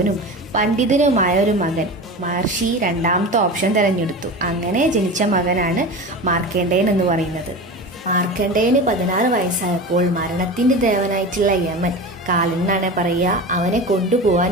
പണ്ഡിതനുമായ ഒരു മകൻ. മഹർഷി രണ്ടാമത്തെ ഓപ്ഷൻ തിരഞ്ഞെടുത്തു. അങ്ങനെ ജനിച്ച മകനാണ് മാർക്കണ്ഡേയൻ എന്ന് പറയുന്നത്. മാർക്കണ്ഡേയന് 16 വയസ്സായപ്പോൾ മരണത്തിന്റെ ദേവനായിട്ടുള്ള യമൻ, കാലൻ എന്നാണ് പറയുക, അവനെ കൊണ്ടുപോകാൻ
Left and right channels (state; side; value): normal; both; correlation 0.29